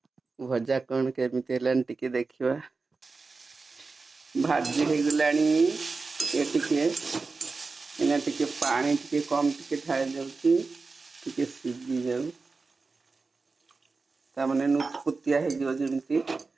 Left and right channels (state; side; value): quieter; left; 4.1 dB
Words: भजा कौन केमिति हेलान टे देखिवा भाजी हो गलानी ये टे इना टे पानी टे कम टे ढाई जाउची टे सीझी जाउ ता माने नुतपुतिया हे जो जेमति